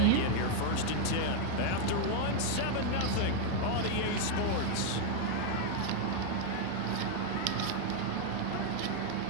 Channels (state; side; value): different; both; correlation 0.00